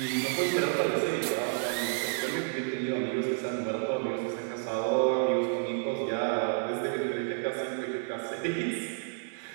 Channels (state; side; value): silent; left; digital silence